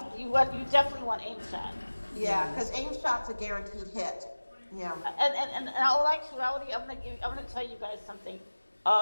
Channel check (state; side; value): inverted; both; correlation -1.00